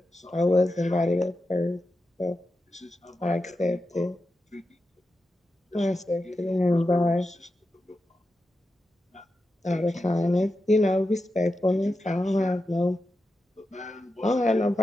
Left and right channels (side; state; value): both; normal; correlation 0.90